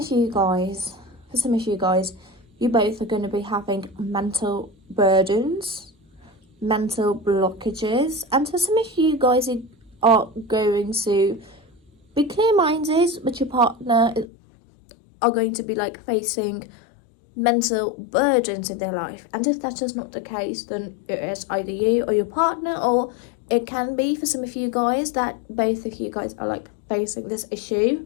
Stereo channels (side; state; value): right; drops out; at 14.2 s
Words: you guys, you both are going to be having mental burdens, mental blockages, and for some of you guys, you are going to be clear-minded, but your partner are going to be like facing mental burdens in their life. And if that is not the case, then it is either you or your partner, or it can be for some of you guys that both of you guys are like facing this issue.